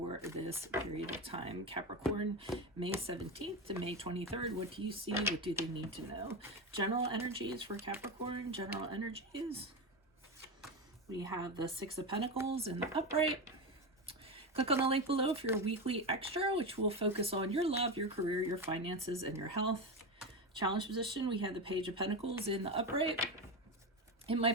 this period of time. Capricorn, May 17th to May 23rd. What do you see? What do they need to know? General energies for Capricorn. General energies. We have the Six of Pentacles in the upright. Click on the link below for your weekly extra, which will focus on your love, your career, your finances, and your health. Challenge position, we have the Page of Pentacles in the upright. In my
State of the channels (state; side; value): normal; both; correlation 0.17